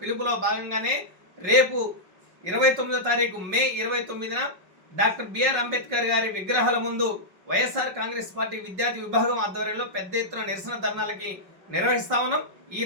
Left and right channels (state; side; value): late; left; 5.5 ms